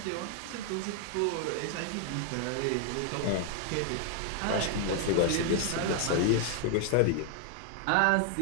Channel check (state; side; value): different; both; correlation 0.00